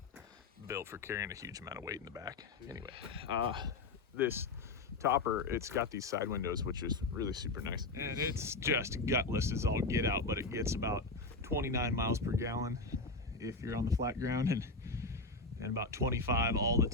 built for carrying a huge amount of weight in the back. Anyway, this topper, it's got these side windows, which is really super nice. And it's just gutless as all get out, but it gets about 29 miles per gallon if you're on the flat ground, and about 25 all the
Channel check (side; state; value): right; quieter; 3.5 dB